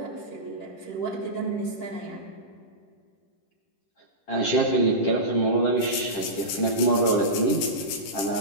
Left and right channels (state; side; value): late; right; 10 ms